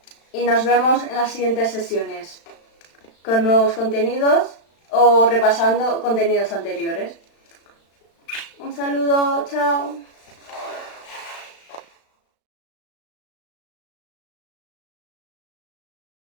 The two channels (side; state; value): right; late; 35 ms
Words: Y nos vemos en las siguientes sesiones con nuevos contenidos o repasando contenidos anteriores. Un saludo, chao.